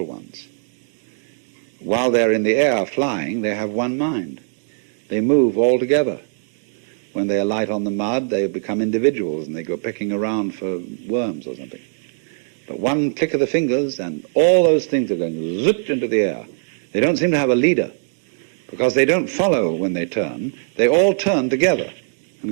ones, while they're in the air flying, they have one mind. They move all together. When they alight on the mud, they become individuals and they go picking around for worms or something. But one click of the fingers and all those things are going zip into the air. They don't seem to have a leader, because they don't follow when they turn. They all turn together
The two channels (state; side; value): silent; left; digital silence